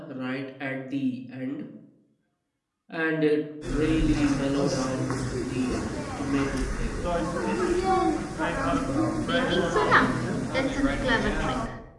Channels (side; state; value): both; identical; correlation 1.00